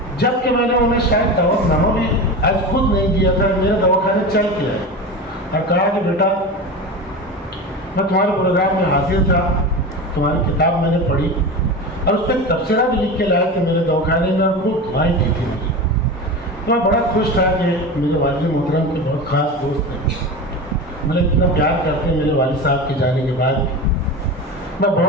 जबकि मैंने उन्हें शायद दवाखाना भी आज खुद नहीं दिया था, मेरे दवाखाने चल के आए और कहा कि बेटा मैं तुम्हारे प्रोग्राम में हाजिर था, तुम्हारी किताब मैंने पढ़ी और उस पर तबसरा भी लिख के लाया कि मेरे दवाखाने में, और खूब दुआएं दी थी मुझे। तो मैं बड़ा खुश था कि मेरे वालिद मोहतरम के बहुत ख़ास दोस्त हैं, मुझे इतना प्यार करते हैं मेरे वालिद साहब के जाने के बाद। मैं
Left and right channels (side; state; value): both; normal; correlation 0.26